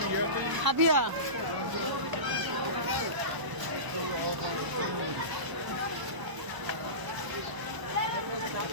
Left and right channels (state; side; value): late; left; 1.0 ms